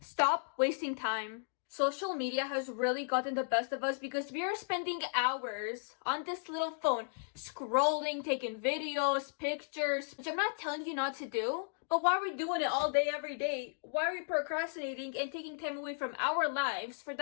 Stop wasting time. Social media has really gotten the best of us because we are spending hours on this little phone, scrolling, taking videos, pictures, which I'm not telling you not to do, but why are we doing it all day, every day? Why are we procrastinating and taking time away from our lives for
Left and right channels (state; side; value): silent; right; digital silence